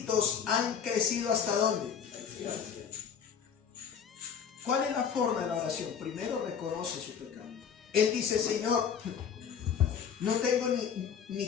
han crecido ¿hasta dónde? ¿Cuál es la forma de la oración? Primero reconoce su pecado. Él dice, Señor, no tengo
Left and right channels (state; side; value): quieter; right; 7.4 dB